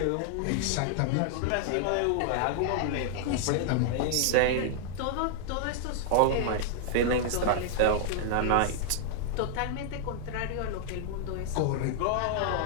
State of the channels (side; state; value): both; different; correlation -0.01